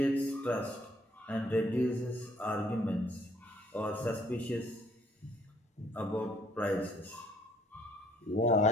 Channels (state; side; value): normal; both; correlation 0.63